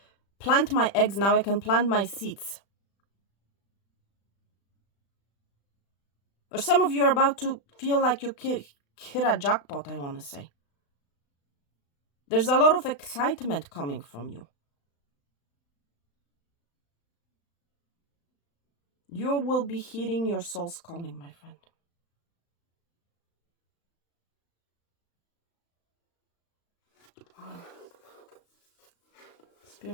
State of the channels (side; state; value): right; late; 35 ms